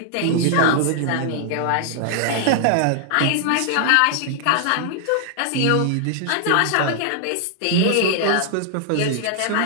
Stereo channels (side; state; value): both; different; correlation 0.00